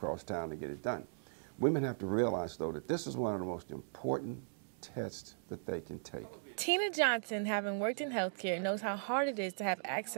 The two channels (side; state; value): left; silent; digital silence